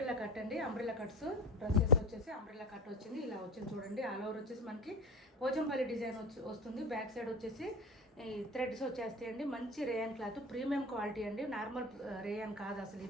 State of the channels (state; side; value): normal; both; correlation 0.30